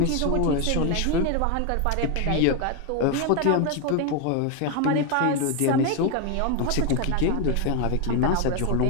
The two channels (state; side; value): different; both; correlation 0.01